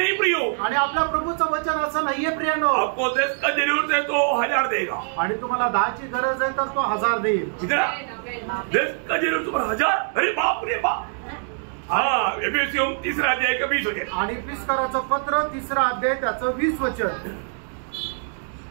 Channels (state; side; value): silent; left; 58 dB below the other